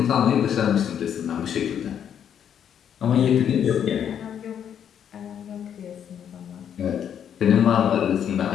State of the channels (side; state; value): right; quieter; 8.9 dB